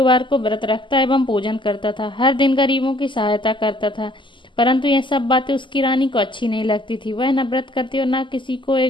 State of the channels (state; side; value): late; right; 0.24 ms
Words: को व्रत रखता एवं पूजन करता था। हर दिन गरीबों की सहायता करता था। परंतु यह सब बातें उसकी रानी को अच्छी नहीं लगती थी। वह न व्रत करती और न किसी को